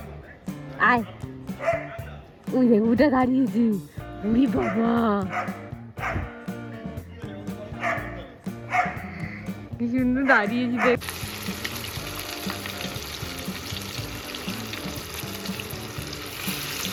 আয়। ওই দেখ ওটা দাঁড়িয়েছে, উড়ি বাবা কি সুন্দর দাঁড়িয়েছি দেখ।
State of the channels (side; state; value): both; identical; correlation 1.00